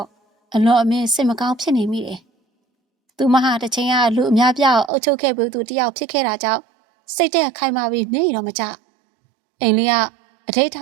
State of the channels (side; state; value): left; drops out; at 4.9 s